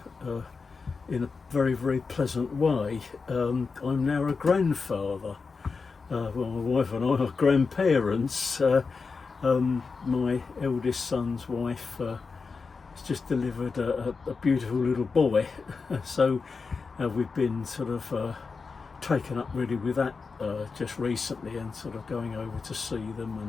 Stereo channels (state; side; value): quieter; right; 4.7 dB